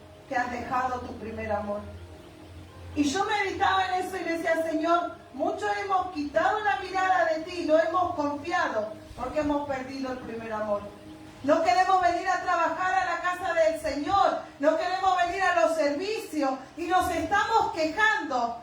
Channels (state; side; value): identical; both; correlation 1.00